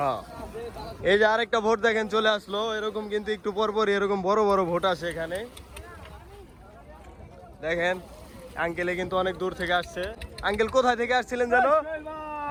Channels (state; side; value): identical; both; correlation 1.00